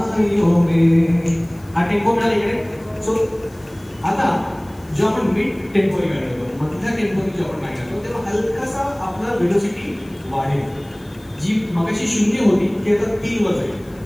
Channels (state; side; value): noise; left; hiss, 28 dB below the sound